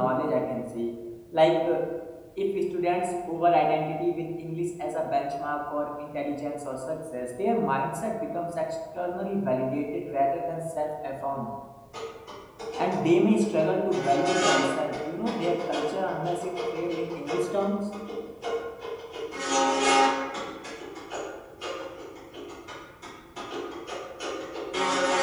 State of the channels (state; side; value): identical; both; correlation 1.00